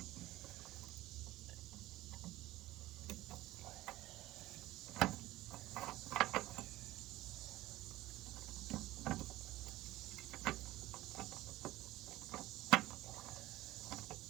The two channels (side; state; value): left; quieter; 16.7 dB